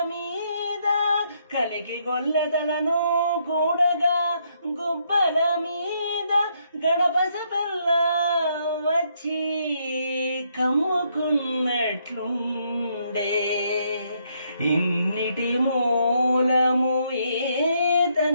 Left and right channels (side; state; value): both; inverted; correlation -0.73